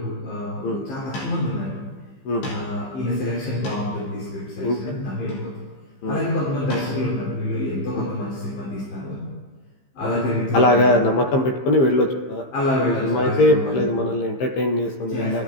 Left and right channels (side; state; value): right; late; 15 ms